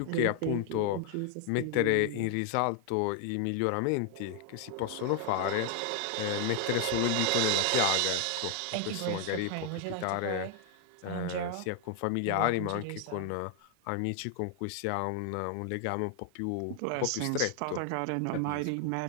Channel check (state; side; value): different; both; correlation 0.00